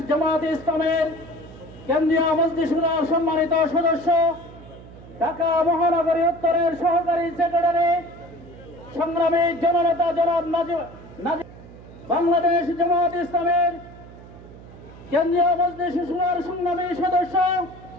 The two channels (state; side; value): noise; right; hum, 18 dB below the sound